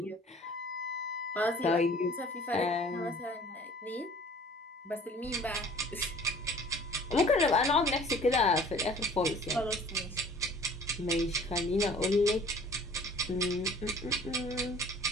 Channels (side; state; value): both; normal; correlation 0.50